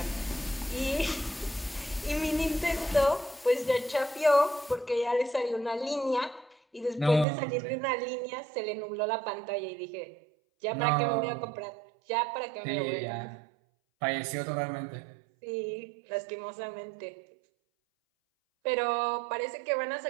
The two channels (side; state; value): left; drops out; at 7.2 s